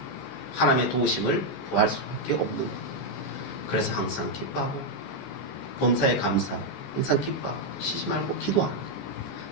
하나님의 도우심을 구할 수밖에 없는 거예요. 그래서 항상 기뻐하고 범사에 감사, 항상 기뻐하고 쉬지 말고 기도하는 거예요.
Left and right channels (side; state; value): right; late; 14 ms